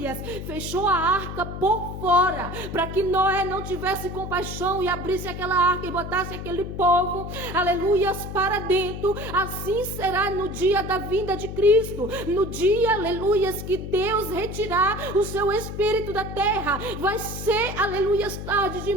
fechou a arca por fora, para que Noé não tivesse compaixão e abrisse aquela arca e botasse aquele povo, aleluias, para dentro, assim será no dia da vinda de Cristo, no dia, aleluias, que Deus retirar o seu espírito da terra. Vai ser, aleluias, tarde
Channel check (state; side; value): noise; left; hum, 8 dB below the sound